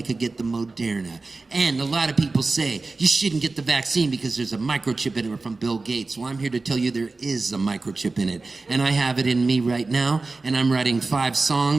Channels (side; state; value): left; quieter; 3.6 dB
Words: could get the Moderna. And a lot of people say, you shouldn't get the vaccine because there's a microchip in it from Bill Gates. Well, I'm here to tell you there is a microchip in it. And I have it in me right now, and I'm writing 5